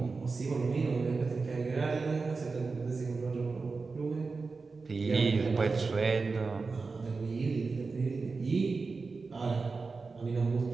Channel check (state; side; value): quieter; left; 4.3 dB